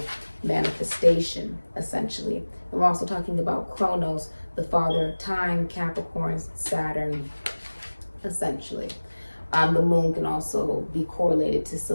manifestation, essentially. And we're also talking about Chronos, the father of time, Capricorn, Saturn, essentially. The moon can also be correlated to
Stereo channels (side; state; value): both; inverted; correlation -1.00